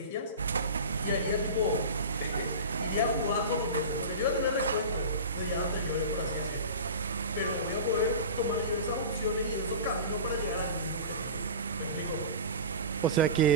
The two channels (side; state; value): both; inverted; correlation -0.31